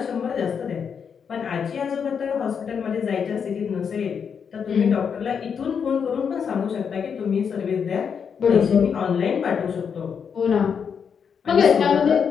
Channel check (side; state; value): right; quieter; 6.8 dB